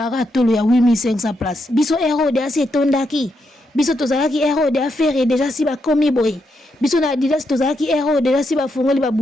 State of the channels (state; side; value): normal; both; correlation 0.81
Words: aratolo ya 8500 places. Biso Aero de assez tondaki. Biso tozalaki Aero de affaire déjà si ba komi boy. Biso na Adidas tozalaki Aero déjà si ba fungoli ba